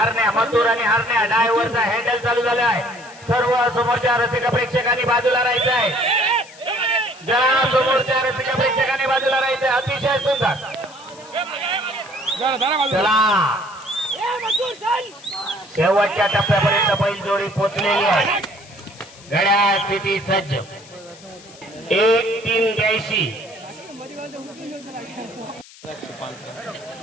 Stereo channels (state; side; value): noise; left; hiss, 21 dB below the sound